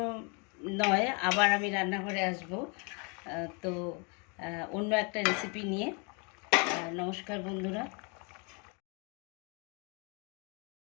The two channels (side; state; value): right; quieter; 34.0 dB